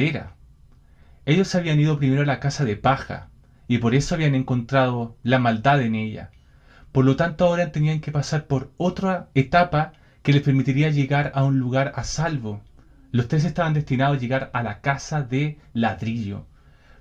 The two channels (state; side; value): identical; both; correlation 1.00